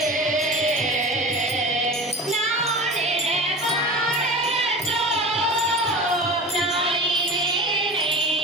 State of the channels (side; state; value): both; normal; correlation 0.34